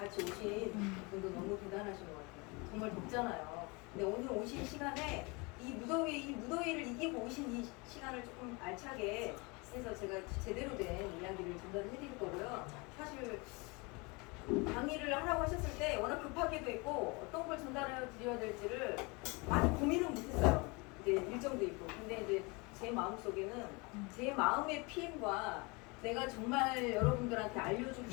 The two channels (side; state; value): right; quieter; 27.9 dB